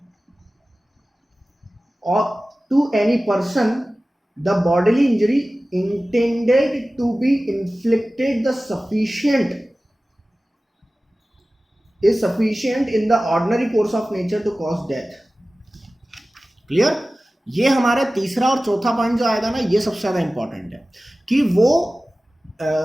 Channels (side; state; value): both; normal; correlation 0.96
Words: or to any person, the bodily injury intended to be inflicted the sufficient is sufficient in the ordinary course of nature to cause death. Clear? ये हमारा तीसरा और चौथा point जो आएगा ना, ये सबसे ज्यादा इंपॉर्टेंट है कि वो